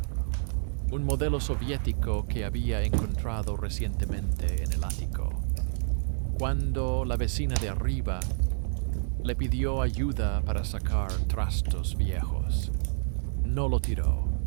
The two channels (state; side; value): silent; left; 59 dB below the other